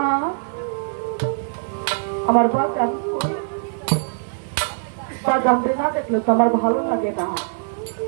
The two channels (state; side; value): silent; left; 62 dB below the other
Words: আমার বাজান বাজানতে না দেখলে তো আমার ভালো লাগে না।